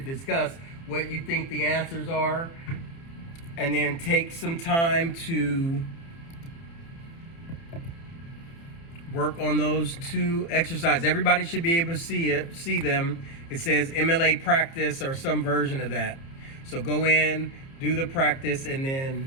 discuss what you think the answers are and then take some time to work on those 2 exercises. Everybody should be able to see them. It says MLA practice or some version of that. So go in, do the practice, and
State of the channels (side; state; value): right; late; 30 ms